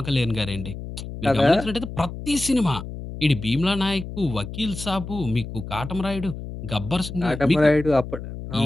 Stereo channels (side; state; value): left; noise; hum, 9 dB below the sound